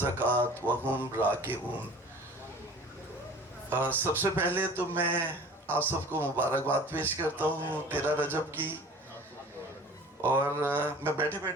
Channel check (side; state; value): both; normal; correlation 0.44